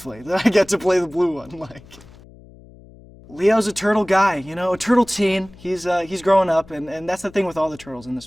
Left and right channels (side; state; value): left; noise; hum, 22 dB below the sound